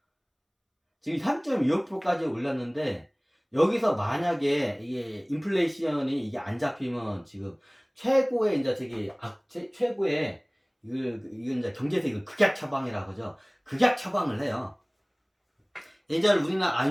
지금 3.25%까지 올랐는데 여기서 만약에 이게 인플레이션이 이게 안 잡히면 지금 최고의 이제 최고의 이건 이제 경제에서 이걸 극약 처방이라고 하죠. 극약 처방을 해요. 예전에 우리나라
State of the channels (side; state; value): both; identical; correlation 1.00